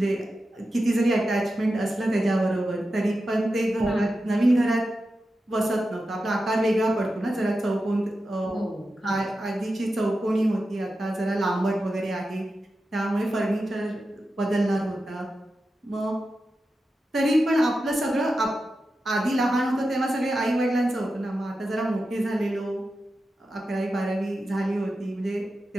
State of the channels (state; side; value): normal; both; correlation 0.91